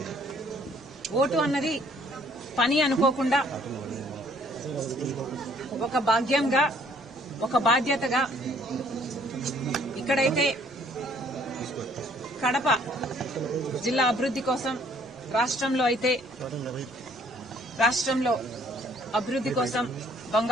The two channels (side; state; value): both; normal; correlation 0.61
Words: ఓటు అన్నది పని అనుకోకుండా ఒక భాగ్యంగా, ఒక బాధ్యతగా, ఇక్కడైతే కడప జిల్లా అభివృద్ధి కోసం, రాష్ట్రంలో అభివృద్ధి కోసం,